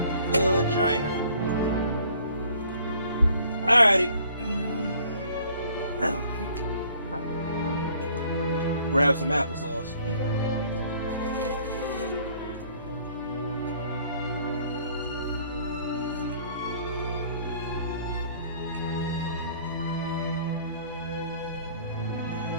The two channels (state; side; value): inverted; both; correlation -0.57